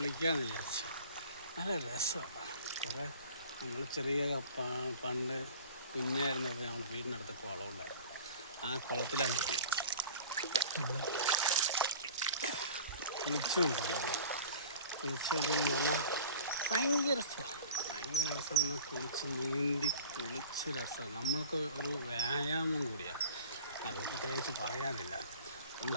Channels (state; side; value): inverted; both; correlation -0.43